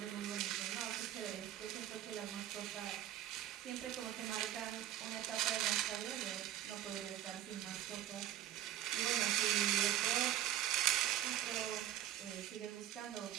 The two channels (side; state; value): left; quieter; 12.5 dB